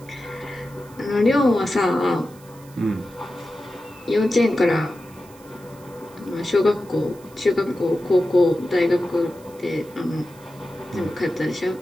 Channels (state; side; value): noise; right; hiss, 25 dB below the sound